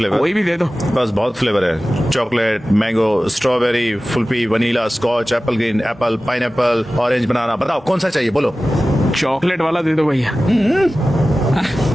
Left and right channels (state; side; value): normal; both; correlation 0.96